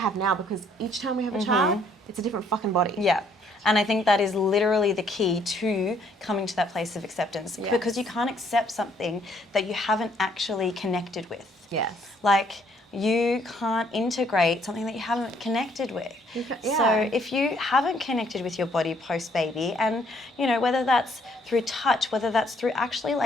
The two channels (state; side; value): normal; both; correlation 0.66